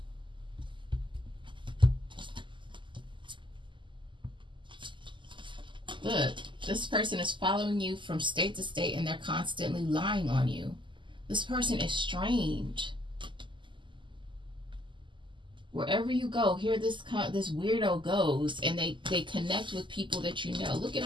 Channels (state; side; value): late; left; 0.24 ms